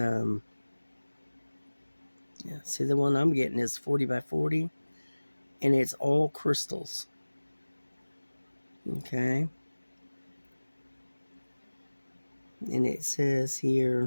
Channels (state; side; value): inverted; both; correlation -1.00